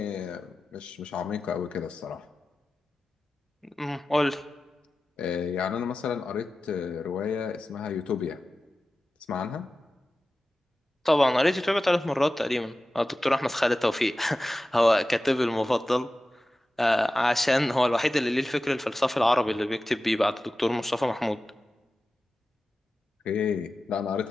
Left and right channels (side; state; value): both; normal; correlation 0.94